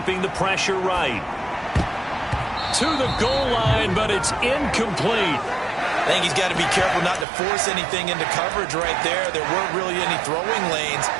the pressure right. To the goal line, but it's incomplete. I think he's got to be careful not to force anything into coverage right there. There weren't really any throwing lanes.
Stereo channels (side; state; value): left; drops out; at 7.2 s